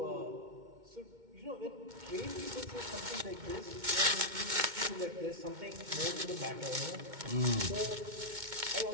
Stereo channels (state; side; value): late; left; 2.2 ms